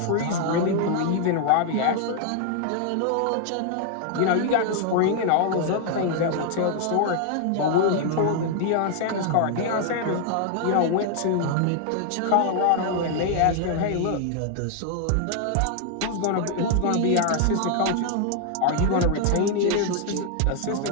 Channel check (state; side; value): different; both; correlation 0.00